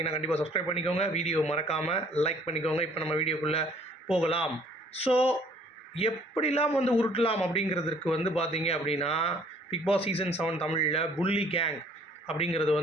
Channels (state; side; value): normal; both; correlation 0.58